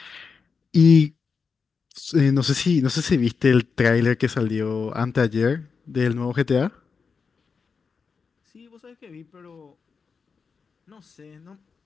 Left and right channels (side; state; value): right; quieter; 5.3 dB